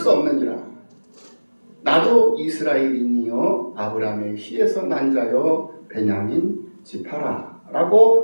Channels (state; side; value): inverted; both; correlation -1.00